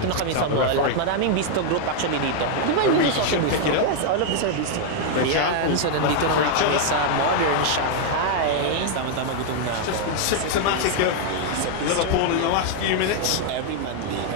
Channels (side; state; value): both; different; correlation 0.00